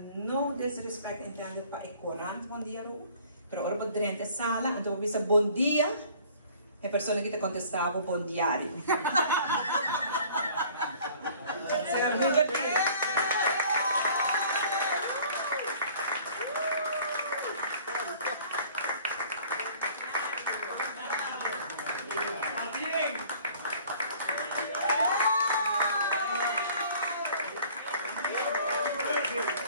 não desrespeito entende para o corante bom dia, mas ora podrenta sala, então visa bom dia, a pessoa que te contestava bom diário.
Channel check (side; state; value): both; inverted; correlation -0.52